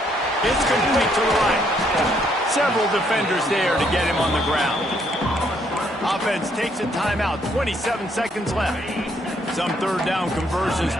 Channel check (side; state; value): both; normal; correlation 0.70